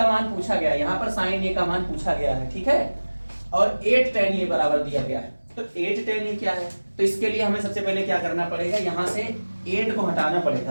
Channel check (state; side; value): inverted; both; correlation -1.00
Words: मान पूछा गया है, यहाँ पर साइन ए का मान पूछा गया है, ठीक है, और 8 tan a बराबर दिया गया है। तो 8 tan a क्या है, तो इसके लिए हमें सबसे पहले क्या करना पड़ेगा, यहाँ से 8 को हटाना